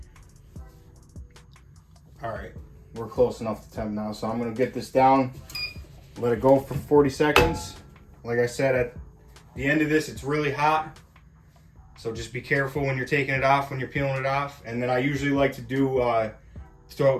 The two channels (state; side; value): identical; both; correlation 1.00